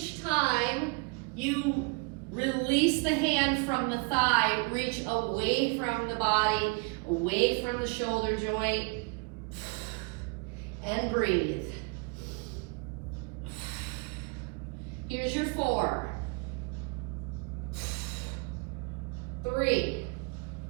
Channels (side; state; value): left; quieter; 32.1 dB